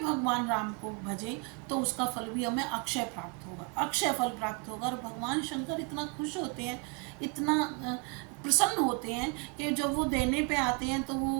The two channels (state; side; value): quieter; left; 32.6 dB